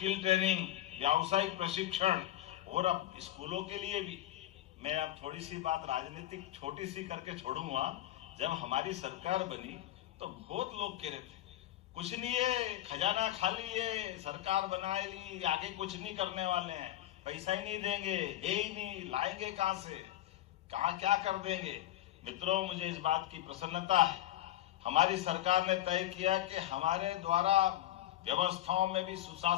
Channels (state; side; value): quieter; right; 13.9 dB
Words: ट्रेनिंग, व्यावसायिक प्रशिक्षण, और अब स्कूलों के लिए भी। मैं अब थोड़ी सी बात राजनीतिक छोटी सी करके छोड़ूंगा। जब हमारी सरकार बनी तो बहुत लोग कह रहे थे कुछ नहीं है, खजाना खाली है, सरकार बना ली, आगे कुछ नहीं करने वाले हैं, पैसा ही नहीं देंगे, है ही नहीं, लाएंगे कहां से, कहां क्या कर देंगे। मित्रों, मुझे इस बात की प्रसन्नता है, हमारी सरकार ने तय किया कि हमारे द्वारा व्यवस्थाओं में भी